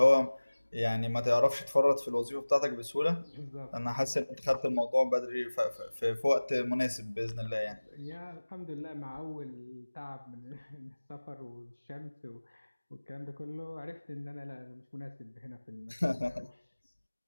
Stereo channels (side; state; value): both; inverted; correlation -1.00